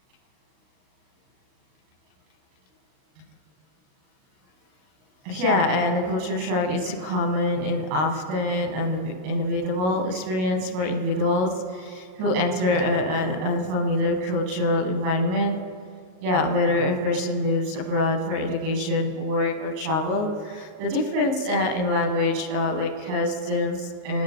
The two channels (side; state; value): left; late; 39 ms